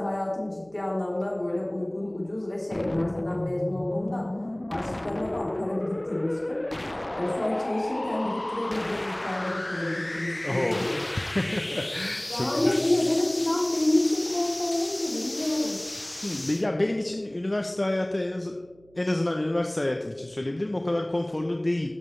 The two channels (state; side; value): noise; right; hum, 28 dB below the sound